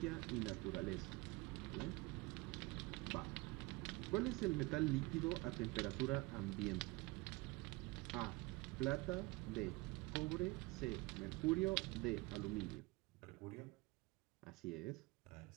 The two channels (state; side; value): quieter; left; 23.4 dB